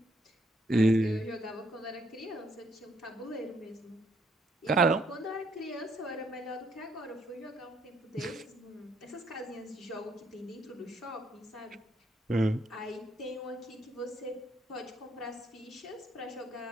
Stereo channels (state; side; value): normal; both; correlation 0.70